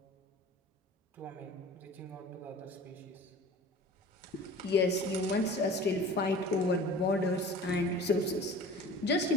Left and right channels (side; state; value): both; normal; correlation 0.42